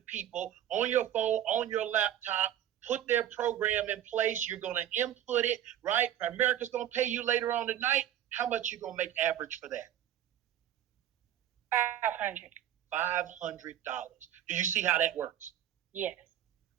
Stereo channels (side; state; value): left; quieter; 11.4 dB